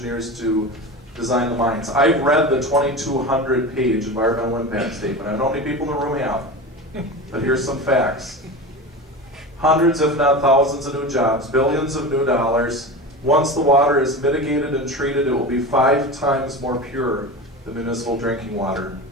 to design the mines. I've read the 2,200-page environmental impact statement. I don't know how many people in the room have, but here's some facts. Hundreds, if not thousands, of new jobs, billions of new dollars. Once the water is mitigated and treated, it will be 5 times more pure than municipal drinking water.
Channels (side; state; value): both; normal; correlation 0.27